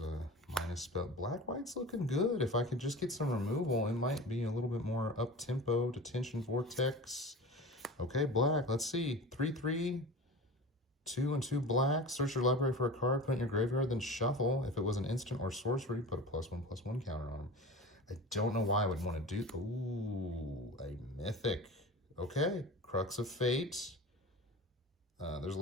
minus spell. Black-white's looking good. If I could just get some removal, it might be a little bit more up-tempo. Detention Vortex. Okay, black. Let's see. 3/3. 2 and 2 black. Search your library for a card, put it in your graveyard, then shuffle. If it was an instant or sorcery, put a +1/+1 counter on them. I don't know why I would want to do... ooh, a mythic. Okay, Crux of Fate. There's a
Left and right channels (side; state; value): both; normal; correlation 0.34